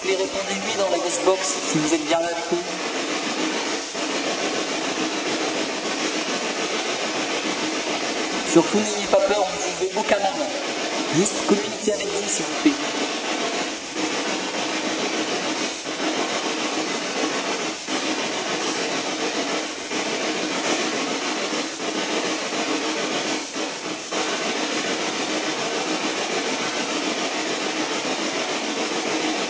plaît, répondez oui dans la ghost box si vous êtes bien là avec nous. Surtout n'ayez pas peur, on ne veut aucun mal. Juste communiquez avec nous s'il vous plaît.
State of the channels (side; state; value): both; identical; correlation 1.00